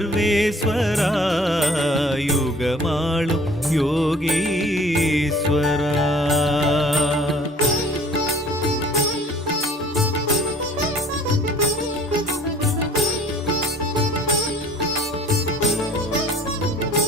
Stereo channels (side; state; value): both; normal; correlation 0.53